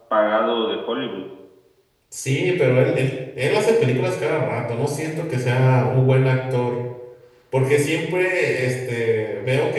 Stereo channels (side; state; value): both; identical; correlation 1.00